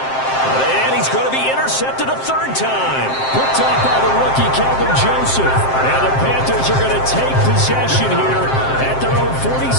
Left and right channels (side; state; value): right; late; 7.6 ms